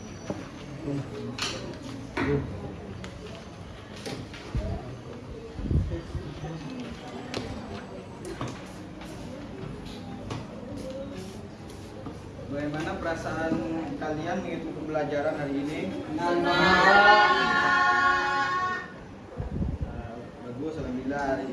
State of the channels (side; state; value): both; identical; correlation 1.00